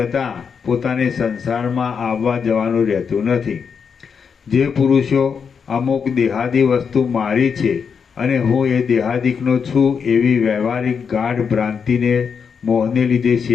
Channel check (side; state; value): right; quieter; 6.4 dB